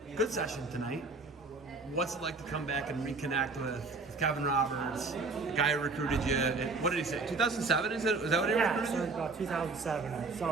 good session tonight. What's it like to come back and reconnect with Kevin Roberts, the guy who recruited you? What did he say? 2007 is it? Was that what he Yeah, recruited so you? about 2007.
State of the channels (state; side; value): quieter; left; 3.8 dB